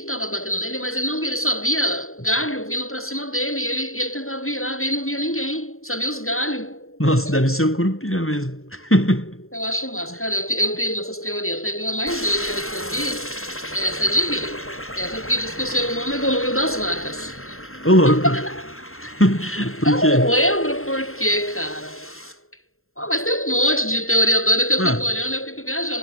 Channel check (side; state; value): right; late; 0.62 ms